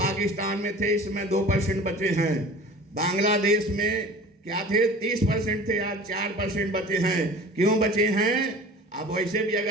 में थे, इसमें 2% बचे हैं। बांग्लादेश में क्या थे 30% थे, आज 4% बचे हैं। क्यों बचे हैं? अब वैसे भी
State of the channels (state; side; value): normal; both; correlation 0.42